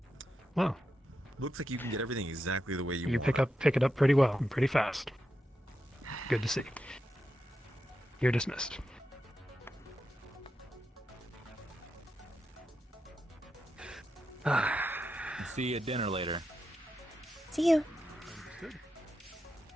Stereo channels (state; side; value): normal; both; correlation 0.87